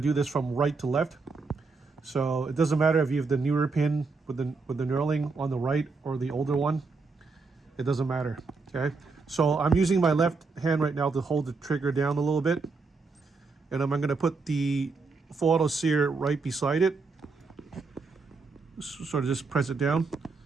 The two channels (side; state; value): left; quieter; 4.2 dB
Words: this from right to left. So it doesn't matter if you have the newer pin with the knurling on the right or the older one. It doesn't matter. Okay. So I'm using my left hand right now to hold the trigger down a little bit, and I'm gonna put the full auto sear right beside it. Sort of just press it down.